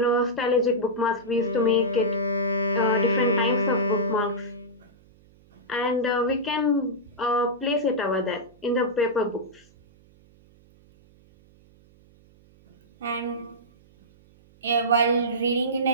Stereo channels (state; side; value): noise; right; hum, 29 dB below the sound